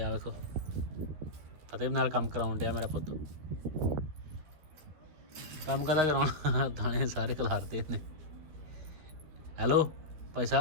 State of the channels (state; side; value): late; left; 13 ms